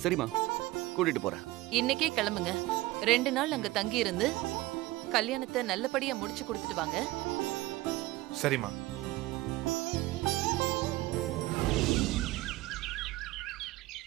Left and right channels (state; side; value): quieter; left; 18.8 dB